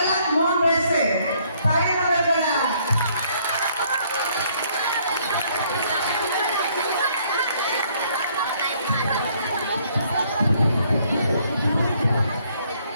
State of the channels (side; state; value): both; inverted; correlation -0.65